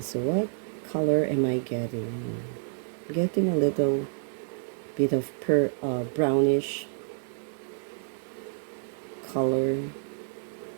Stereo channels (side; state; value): left; silent; digital silence